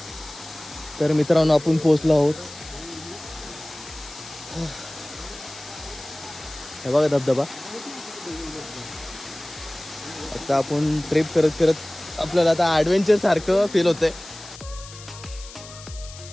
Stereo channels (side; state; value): left; noise; hiss, 16 dB below the sound